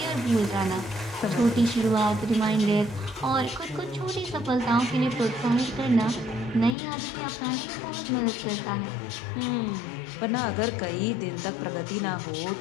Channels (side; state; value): right; drops out; at 6.8 s